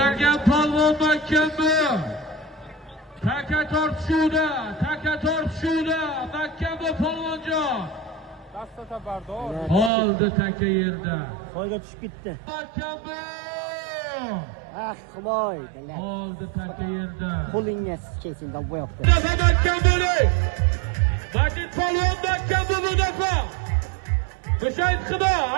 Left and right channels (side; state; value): left; drops out; at 9.9 s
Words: polvon makkan bu. Taka tortishuvda, makkan bu polvonjon. Dastata bardor. Oldi taka yerda. Soyga tushib ketdi. Makkan bu. Ah, Xudoy, oldi taka yerda. Qo'lingiz kesinda bu yoqda. Makkan bo'ling. Majid polvon makkan bu mudafa. Mushayid qiba,